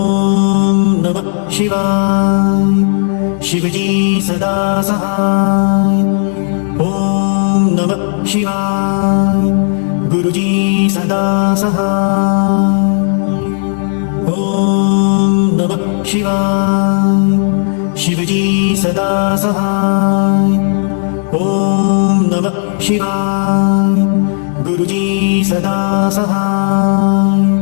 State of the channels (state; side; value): silent; right; 60 dB below the other